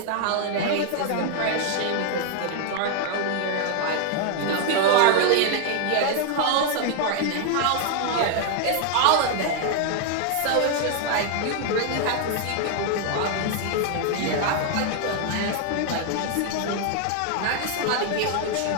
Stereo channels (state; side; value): different; both; correlation 0.00